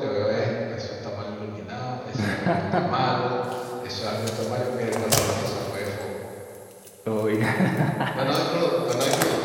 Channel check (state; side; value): identical; both; correlation 1.00